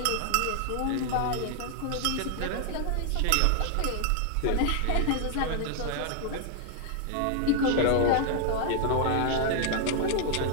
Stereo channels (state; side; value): different; both; correlation 0.00